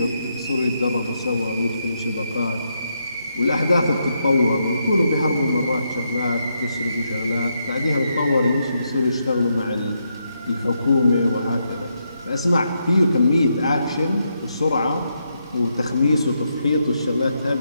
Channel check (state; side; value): inverted; both; correlation -0.80